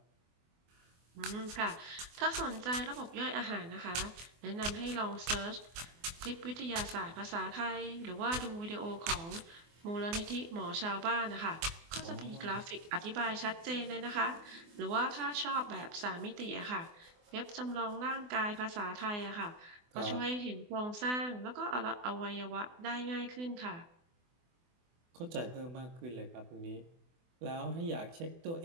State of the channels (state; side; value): late; left; 24 ms